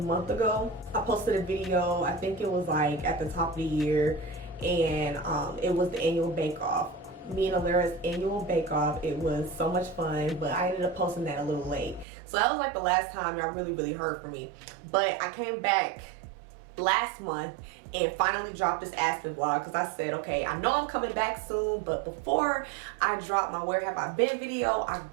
ago, I posted a video, I think it was like at the top of the year, and it was the annual bake-off. Me and Alira's annual bake-off. It was so much fun, but I ended up posting that a little late. So that was like the last time y'all really heard from me. But I came back last month and finally dropped this Aspen vlog, because I said, okay, I know I'm coming back soon, but before I drop my Where Have I Been video, I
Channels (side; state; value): left; drops out; at 12.1 s